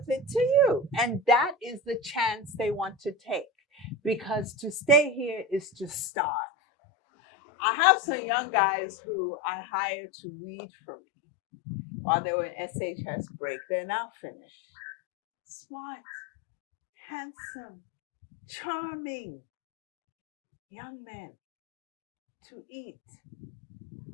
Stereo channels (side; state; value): right; drops out; at 6.1 s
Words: it to you? And that is the chance they want to take, because to stay here is to starve. I have some young guys who I hired to read for me while they were in SHS break. They're now finished. Smart, handsome, charming young men. to eat